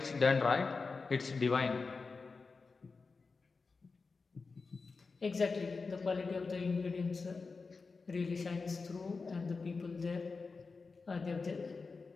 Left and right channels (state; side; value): quieter; right; 4.3 dB